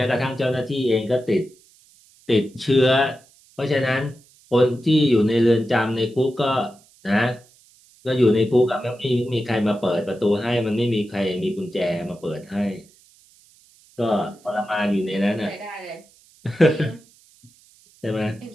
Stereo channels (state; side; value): noise; right; hiss, 29 dB below the sound